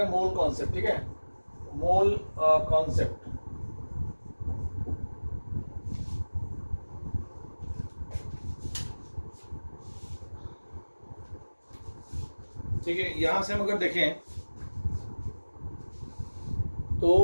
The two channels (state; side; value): inverted; both; correlation -1.00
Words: हैं मोल कॉन्सेप्ट। ठीक है, मोल कॉन्सेप्ट। ठीक है, यहां से हम अगर देखें